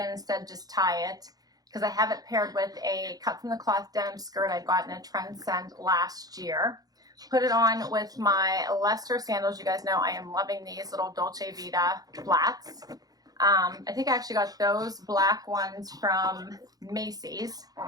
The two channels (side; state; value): left; late; 0.18 ms